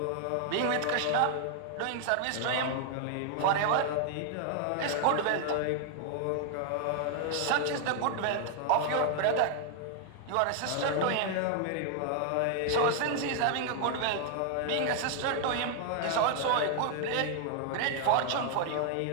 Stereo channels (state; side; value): different; both; correlation 0.00